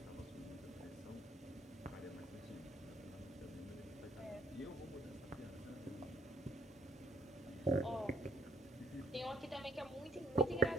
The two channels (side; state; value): both; normal; correlation 0.68